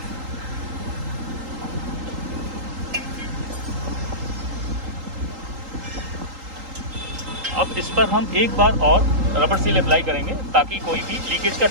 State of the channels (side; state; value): left; late; 3.8 ms